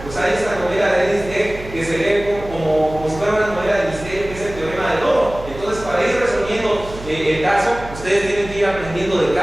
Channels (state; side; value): noise; right; hum, 14 dB below the sound